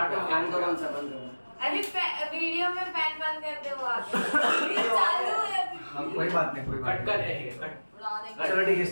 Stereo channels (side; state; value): both; inverted; correlation -1.00